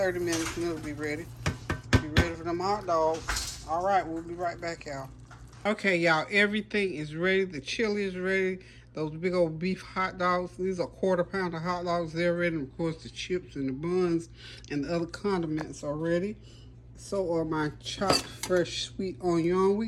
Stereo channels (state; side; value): identical; both; correlation 1.00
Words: minutes and it'll be ready. Be ready for them hot dogs. All right, we'll be right back, y'all. Okay, y'all, everything is ready. The chili is ready. Those big old beef hot dogs, these are 1/4 pound of hot dogs. They're ready. And of course, the chips and the buns and the other condiments are ready. So are my chopped fresh sweet onion. We